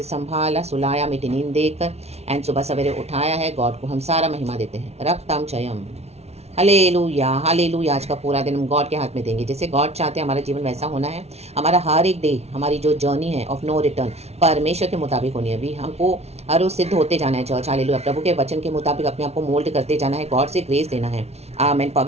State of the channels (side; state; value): left; late; 0.31 ms